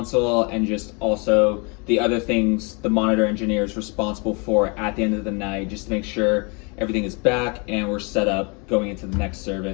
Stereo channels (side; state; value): right; quieter; 31.8 dB